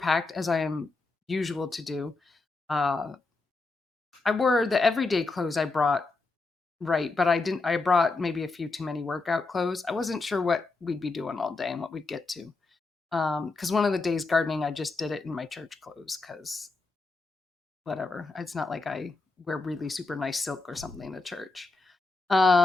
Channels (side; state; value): right; quieter; 3.6 dB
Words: as I am usual to do. Uh, I wore the everyday clothes I brought, right, but I brought maybe a few too many workout clothes. I wasn't sure what we'd be doing all day and what we'd get to. Because one of the days gardening, I just did it in my church clothes because whatever. It's not like I wear really super nice silk or something to church.